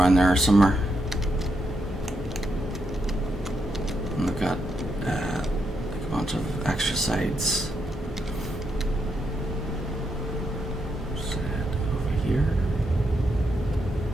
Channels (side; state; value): both; normal; correlation 0.81